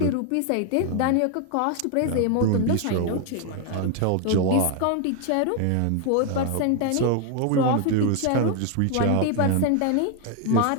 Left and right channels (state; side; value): different; both; correlation 0.01